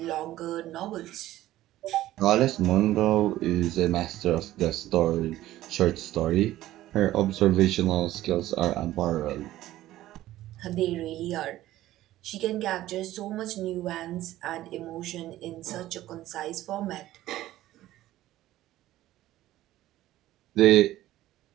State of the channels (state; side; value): quieter; left; 14.9 dB